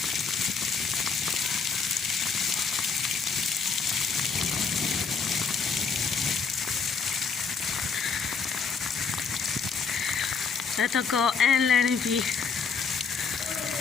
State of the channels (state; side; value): quieter; right; 5.4 dB